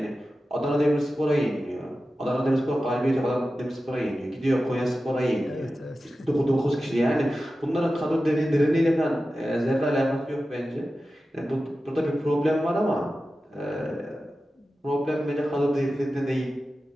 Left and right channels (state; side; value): normal; both; correlation 0.93